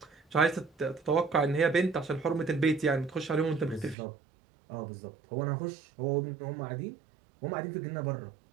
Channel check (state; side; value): drops out; left; at 4.0 s